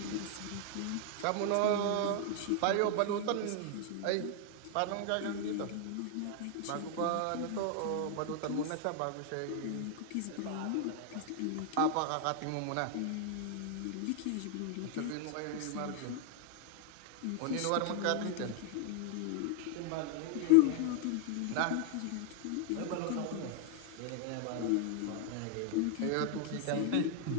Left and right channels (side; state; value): both; different; correlation 0.00